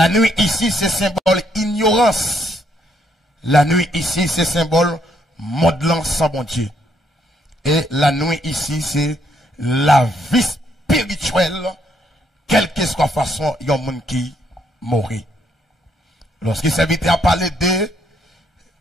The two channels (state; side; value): normal; both; correlation 0.72